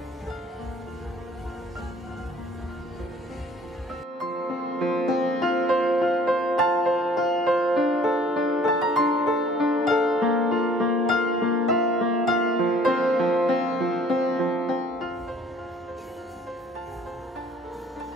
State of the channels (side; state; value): both; normal; correlation 0.55